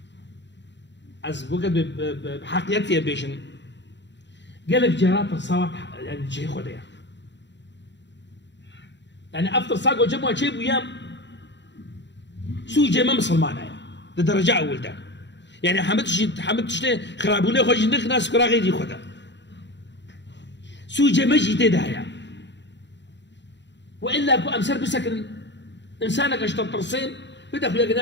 از بوقت بحقيقتي بيشن قال لك جرات ترساوا يعني جي خديا يعني افطر ساقو جمعوا شيء ويام سوي جي ما مسلمان لدرجه اول ده يعني حمدتش خرابونه خوش نخ ناس كرا غيري خدا سوي جي مجي تدايا والا كو امسر بسكن انسانك اشتر ترسيم بدا خويا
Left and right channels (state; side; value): late; right; 0.52 ms